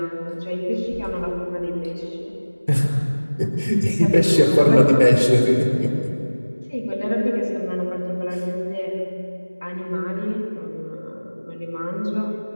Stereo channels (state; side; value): inverted; both; correlation -1.00